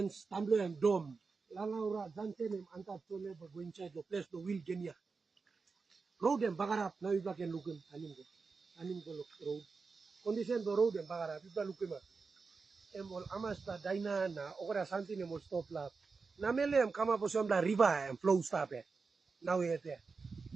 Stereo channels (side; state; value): left; quieter; 4.6 dB